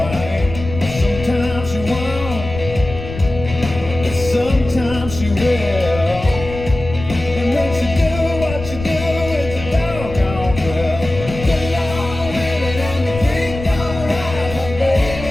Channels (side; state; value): left; noise; rumble, 10 dB below the sound